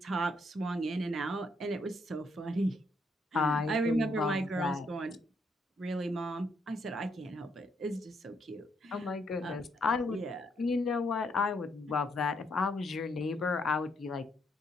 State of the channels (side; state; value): both; normal; correlation 0.74